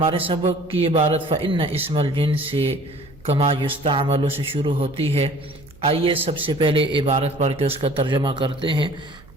سبق کی عبارت فإن اسم الجنس کما یستعمل سے شروع ہوتی ہے۔ آئیے سب سے پہلے عبارت پڑھ کے اس کا ترجمہ کرتے ہیں،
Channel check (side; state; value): right; noise; hum, 24 dB below the sound